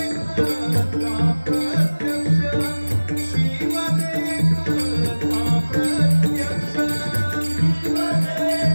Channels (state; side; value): inverted; both; correlation -1.00